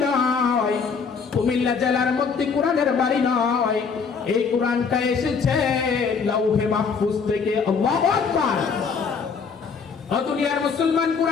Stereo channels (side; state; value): right; quieter; 5.6 dB